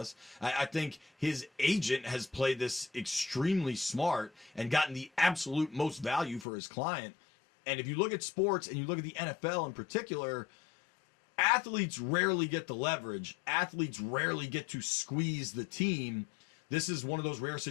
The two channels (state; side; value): drops out; right; at 6.5 s